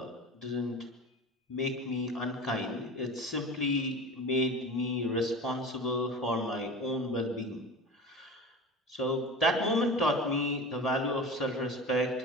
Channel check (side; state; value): both; normal; correlation 0.33